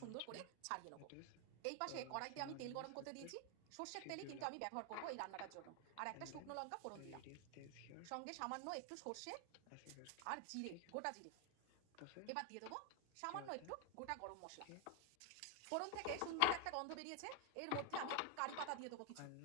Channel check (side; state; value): both; different; correlation 0.00